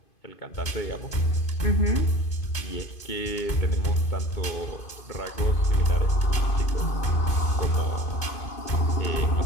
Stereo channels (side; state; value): right; late; 2.5 ms